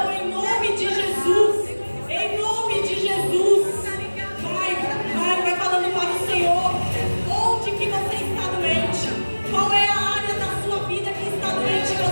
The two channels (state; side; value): inverted; both; correlation -1.00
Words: em nome de Jesus. Em nome de Jesus. Vai falando para o Senhor. Onde que você está doente? Qual é a área da sua vida que está doente e